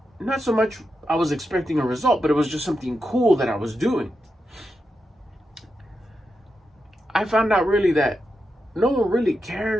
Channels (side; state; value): both; normal; correlation 0.87